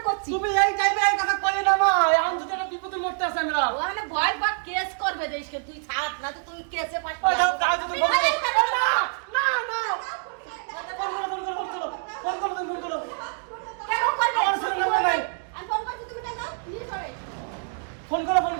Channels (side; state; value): left; silent; 56 dB below the other